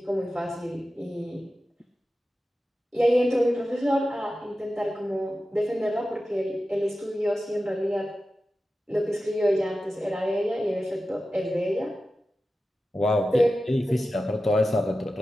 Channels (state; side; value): normal; both; correlation 0.93